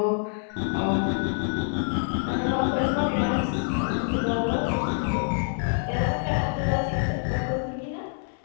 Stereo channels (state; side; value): silent; right; 60 dB below the other